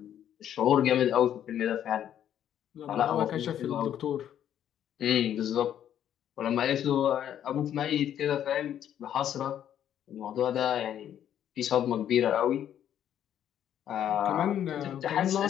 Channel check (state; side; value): quieter; right; 10.3 dB